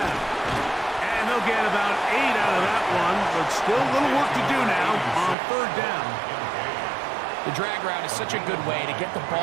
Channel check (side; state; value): left; drops out; at 5.4 s